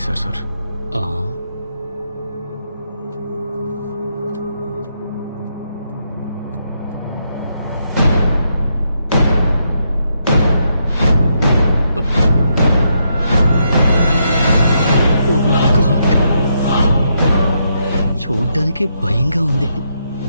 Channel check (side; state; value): both; inverted; correlation -0.79